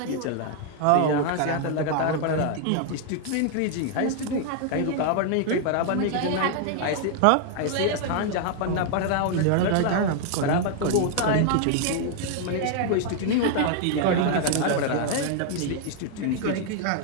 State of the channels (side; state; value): both; different; correlation 0.00